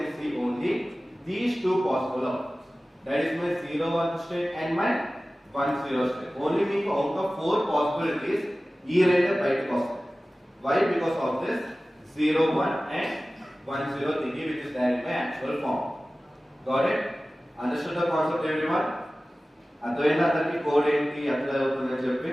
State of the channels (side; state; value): both; normal; correlation 0.97